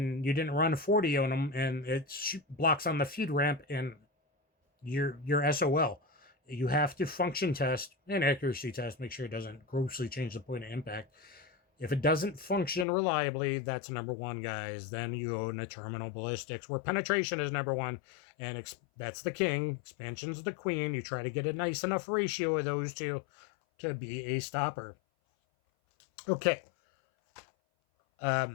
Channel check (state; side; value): drops out; right; at 12.9 s